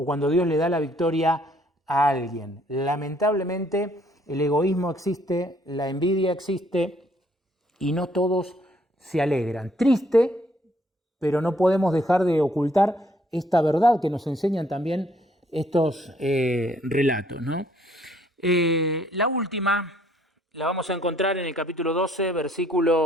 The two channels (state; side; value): normal; both; correlation 0.65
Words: cuando Dios le da la victoria a alguien. Lamentablemente, el egoísmo existe, la envidia existe y no todos se alegran. Triste, pero no podemos dejar de ocultar esta verdad que nos enseñan también estos relatos, ¿no? La última la vamos a encontrar en el capítulo 12,